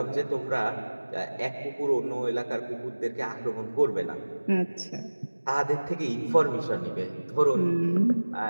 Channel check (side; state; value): both; inverted; correlation -1.00